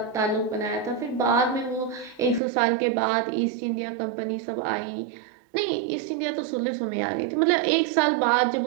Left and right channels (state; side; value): drops out; left; at 2.4 s